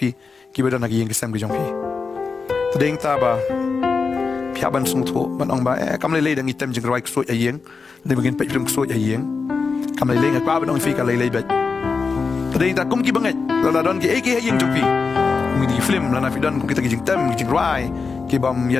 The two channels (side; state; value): right; quieter; 4.8 dB